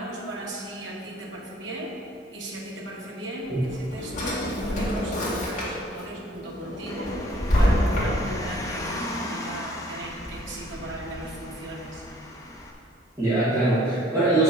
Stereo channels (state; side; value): normal; both; correlation 0.57